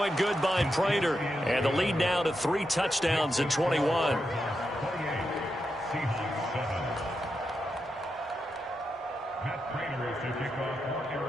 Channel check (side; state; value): both; normal; correlation 0.86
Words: good by Prater, and the lead now to 3 touchdowns at 21.